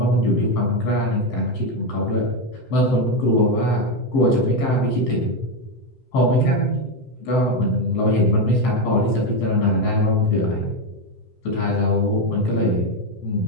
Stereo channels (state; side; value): late; right; 7.7 ms